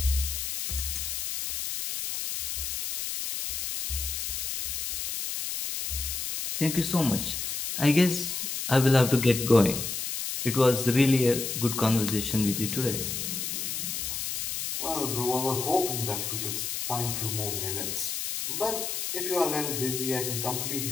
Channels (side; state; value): left; noise; hiss, 3 dB below the sound